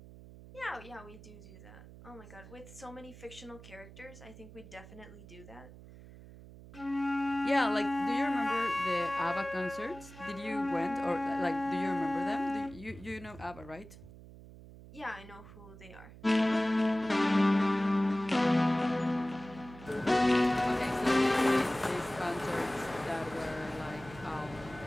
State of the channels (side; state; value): right; noise; hum, 18 dB below the sound